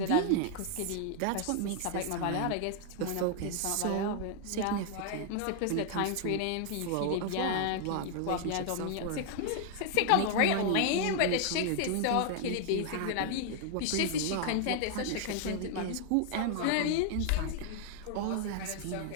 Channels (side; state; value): both; different; correlation 0.00